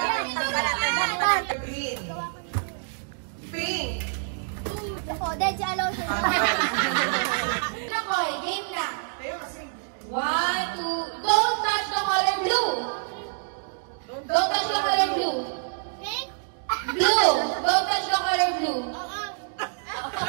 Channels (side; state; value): left; silent; digital silence